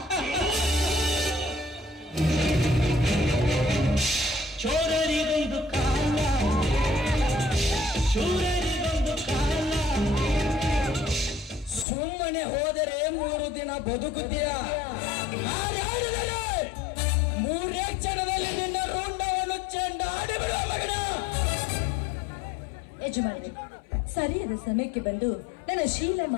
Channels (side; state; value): right; drops out; at 11.9 s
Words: ಚೋರರಿಗೊಂದು ಕಾಲ, ಶೂರರಿಗೊಂದು ಕಾಲ. ಸುಮ್ಮನೆ ಹೋದರೆ 3 ದಿನ ಬದುಕುತ್ತೀಯ. ಮೂರೇ ಕ್ಷಣದಲ್ಲಿ ನಿನ್ನ ರುಂಡವನ್ನು ಚೆಂಡಾಡಿ ಬಿಡುವ ಮಗನ. ಯಜಮಾನಿ, ಸರಿಯಾದ ಸಮಯಕ್ಕೆ ಬಂದು ನನ್ನ